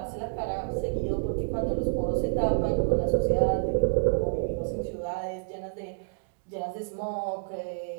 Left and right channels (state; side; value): silent; left; digital silence